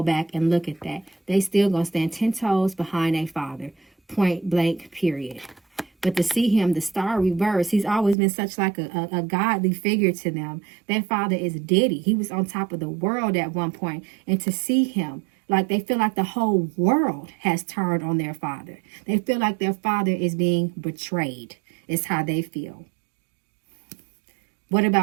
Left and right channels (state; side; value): drops out; left; at 8.2 s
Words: back and look at that. They still going to stand 10 toes behind their father. Point blank, period. But to see him, the star reverse, he's always been such like a godly figure to them. Their father is Diddy. He was on top of the world at one point. And to see him, like they feel like the whole world has turned on their father. They feel like their father is being betrayed. Is how they feel. What